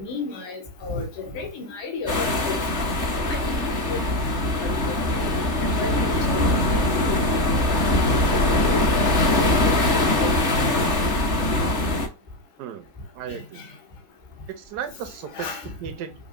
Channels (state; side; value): late; left; 3.3 ms